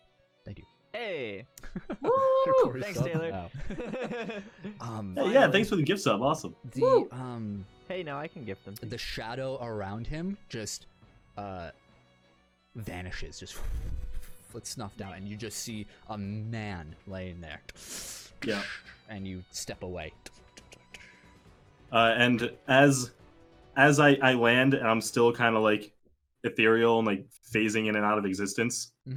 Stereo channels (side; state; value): both; identical; correlation 1.00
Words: Thank you. Hey. Woo! Thanks, Taylor. Yeah, thanks for the gift sub. Awesome. Hey, now I can gift them. The shadow around him just vanishes, just gets snuffed out, and you just see a man laying there. Yeah. And you step away. And as I land, and I'm still kind of like ethereal and like phasing in and out of existence,